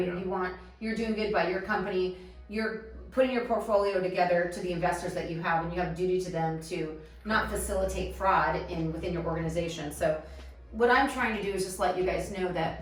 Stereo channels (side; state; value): both; identical; correlation 1.00